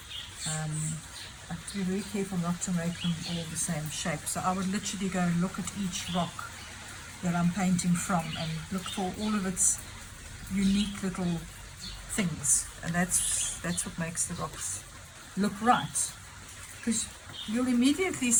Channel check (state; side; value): identical; both; correlation 1.00